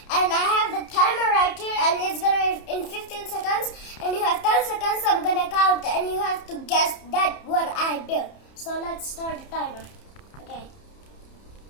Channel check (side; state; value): right; late; 30 ms